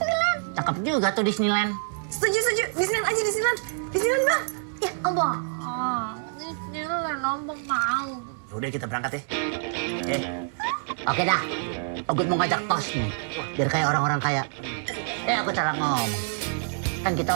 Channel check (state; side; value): silent; left; digital silence